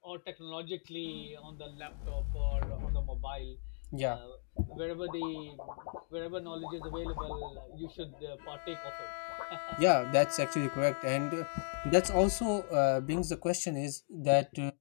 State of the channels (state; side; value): silent; right; digital silence